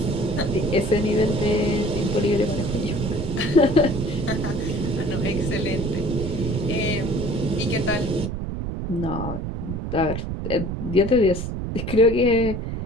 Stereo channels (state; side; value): noise; right; rumble, 4 dB below the sound